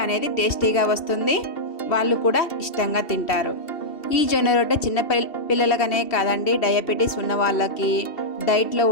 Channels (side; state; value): right; late; 2.7 ms